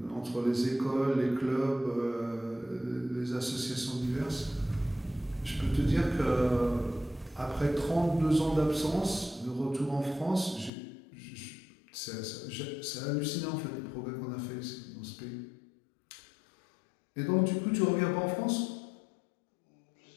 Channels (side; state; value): right; drops out; at 10.7 s